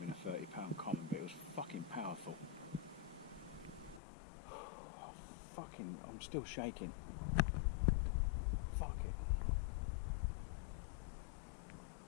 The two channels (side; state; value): right; drops out; at 4.0 s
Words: a 30-pound common, but it was fucking powerful. I'm still shaking. Fuck it.